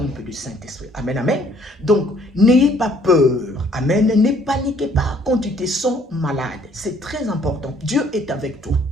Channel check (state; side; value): normal; both; correlation 0.61